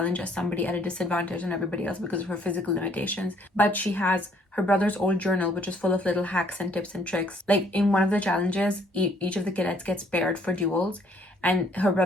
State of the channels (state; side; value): normal; both; correlation 0.63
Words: as somebody at a disadvantage on everybody else because of her physical limitations. But she has her brother's old journal, which is full of little hacks and tips and tricks. Like, in one of the challenges, each of the cadets gets paired for duels, and her